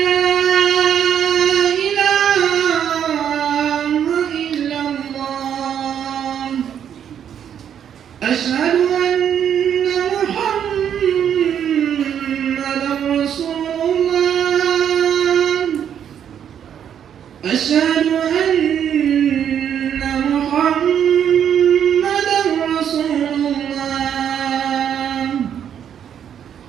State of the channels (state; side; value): quieter; left; 9.0 dB